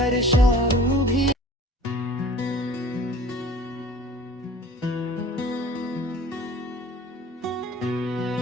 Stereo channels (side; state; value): both; normal; correlation 0.47